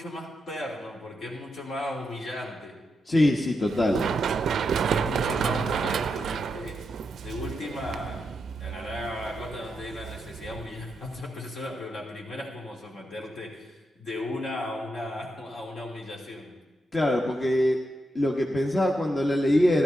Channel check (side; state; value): both; normal; correlation 0.85